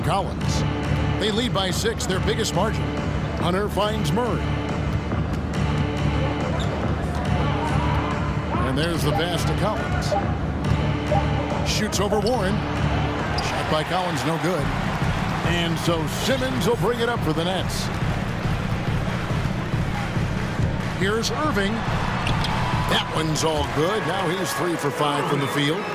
Collins. They lead by 6, their biggest margin. Hunter finds Murray. And there's the pass to Collins. Shoots over Warren. Shot by Collins, no good. And so Simmons will bring it up for the Nets. Here's Irving. That one's all good. Now he's 3 for 5 from the field.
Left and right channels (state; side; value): identical; both; correlation 1.00